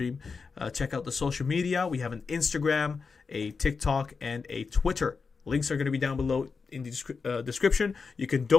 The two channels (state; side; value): quieter; right; 5.0 dB